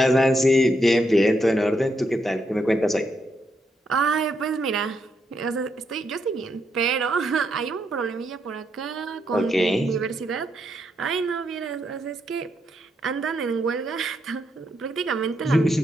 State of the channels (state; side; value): normal; both; correlation 0.79